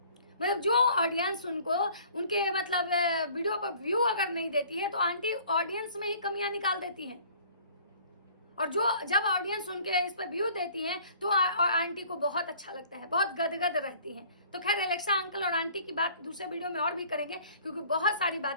मतलब जो ऑडियंस उनको उनके मतलब वीडियो पर व्यू अगर नहीं देती है तो आंटी ऑडियंस में ही कमियां निकाल देती हैं, और जो जब ऑडियंस उनके इस पर व्यू देती है तो आंटी को बहुत अच्छा लगता है, बहुत गदगद रहती हैं। तो खैर एलेक्सा अंकल और आंटी की बात दूसरे वीडियो में और भी करेंगे क्योंकि बहुत सारी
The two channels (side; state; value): both; inverted; correlation -0.53